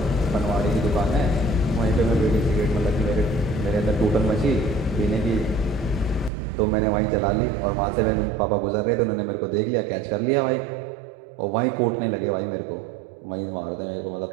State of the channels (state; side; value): drops out; left; at 6.3 s